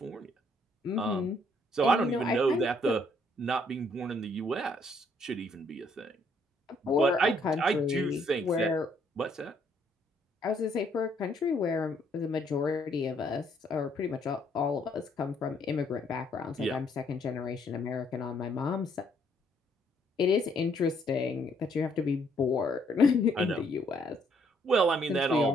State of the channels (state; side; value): normal; both; correlation 0.68